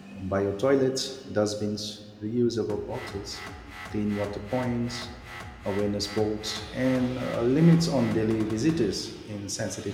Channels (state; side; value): identical; both; correlation 1.00